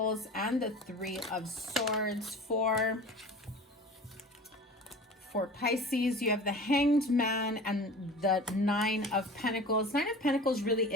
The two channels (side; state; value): both; normal; correlation 0.38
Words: and the Three of Swords for Pisces. You have the Hanged Man and the Nine of Pentacles. Nine of Pentacles really